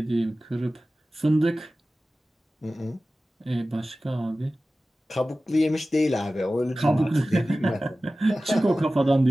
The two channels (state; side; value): normal; both; correlation 0.96